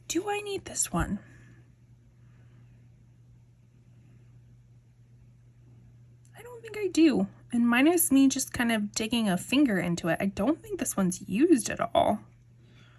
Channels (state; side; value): identical; both; correlation 1.00